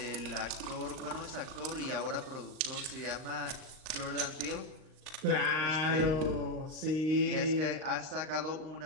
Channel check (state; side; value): late; left; 39 ms